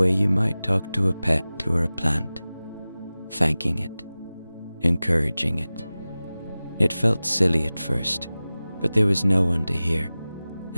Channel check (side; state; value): both; inverted; correlation -0.97